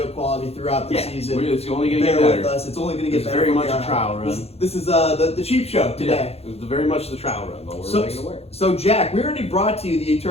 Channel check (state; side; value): late; right; 0.29 ms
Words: quality throughout the season. It's only going to get Bear better. with us. It's only going to get better. Very much a trial run. This is the cheap show today. Yeah, it's very much the trial run, but we're making it work. So Jack, we already brought to you the